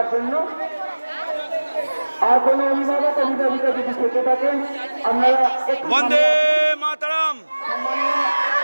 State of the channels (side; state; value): both; inverted; correlation -1.00